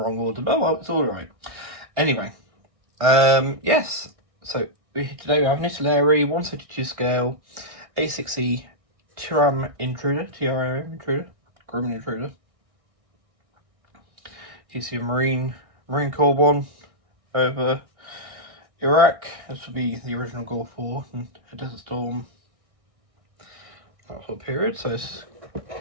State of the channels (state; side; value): late; left; 1.6 ms